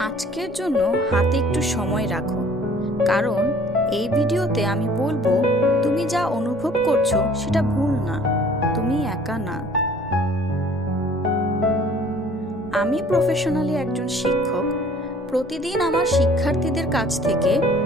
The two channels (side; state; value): both; normal; correlation 0.53